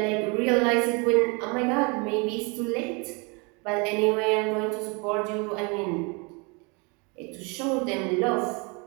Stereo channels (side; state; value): left; quieter; 30.8 dB